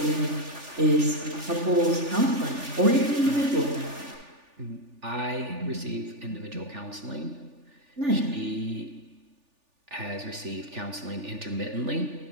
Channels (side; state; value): left; late; 3.4 ms